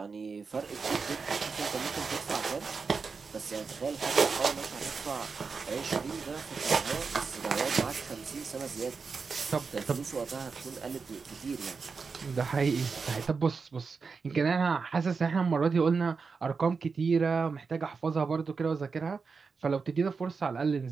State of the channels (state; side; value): quieter; left; 5.0 dB